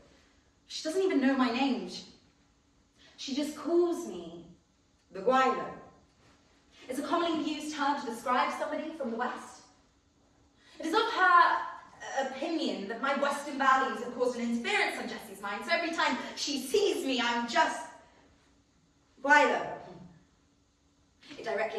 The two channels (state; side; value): identical; both; correlation 1.00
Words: she doesn't even know my name. She just calls me the Whiley. It's a commonly used term to describe somebody from the West. It is of her opinion that my Western values have caused an interference on Jessie's mind, so every time she sees me, I'm just Whiley. It